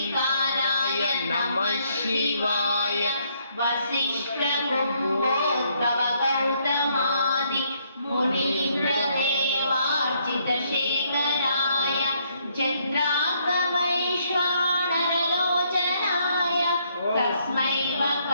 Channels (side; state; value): both; inverted; correlation -0.70